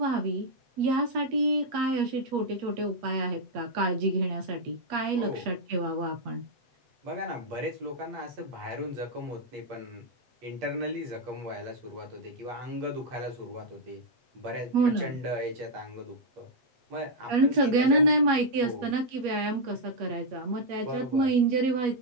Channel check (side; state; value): left; late; 8.4 ms